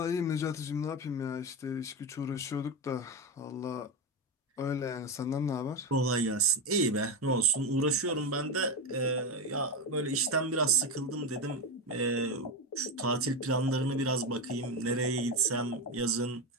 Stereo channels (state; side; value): normal; both; correlation 0.15